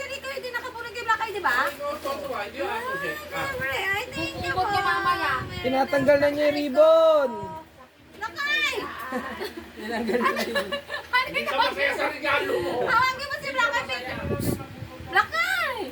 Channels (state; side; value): identical; both; correlation 1.00